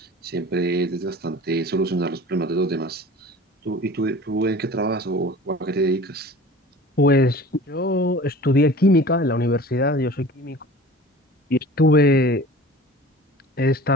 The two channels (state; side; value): normal; both; correlation 0.42